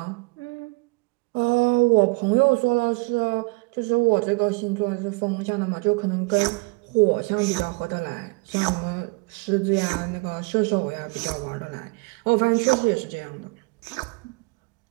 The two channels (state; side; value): quieter; left; 28.0 dB